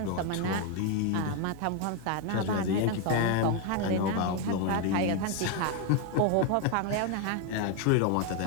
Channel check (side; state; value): both; different; correlation 0.01